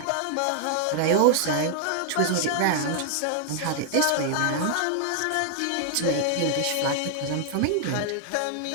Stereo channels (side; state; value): both; different; correlation 0.00